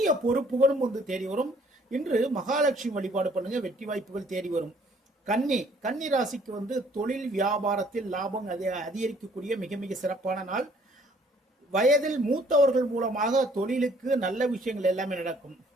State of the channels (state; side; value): normal; both; correlation 0.60